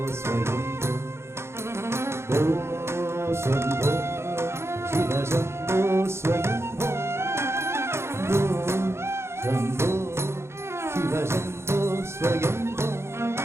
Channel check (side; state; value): left; late; 0.13 ms